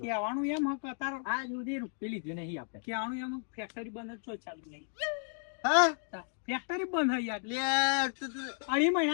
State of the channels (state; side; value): silent; right; 55 dB below the other